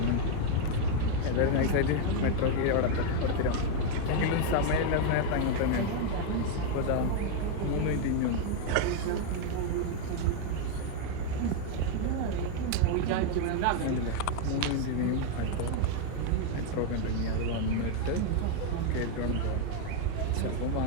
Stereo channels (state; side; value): different; both; correlation 0.01